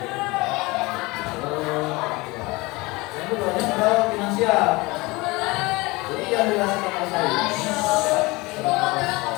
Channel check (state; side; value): quieter; right; 23.2 dB